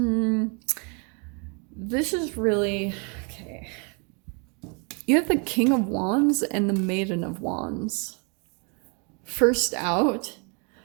This is really, okay. You have the King of Wands and the Maiden of Wands. First out.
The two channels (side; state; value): left; quieter; 35.0 dB